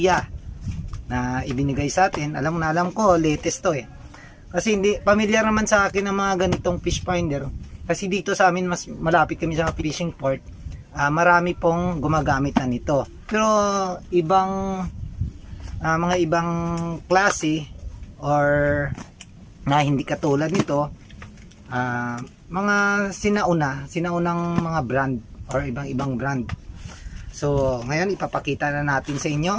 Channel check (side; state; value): both; identical; correlation 1.00